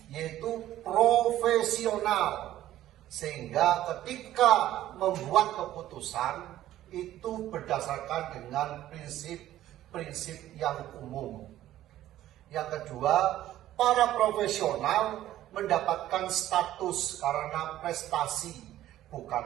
yaitu profesional, sehingga ketika membuat keputusan itu berdasarkan dengan prinsip-prinsip yang umum. Yang kedua, para profesional mendapatkan status karena prestasi,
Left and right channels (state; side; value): quieter; left; 13.5 dB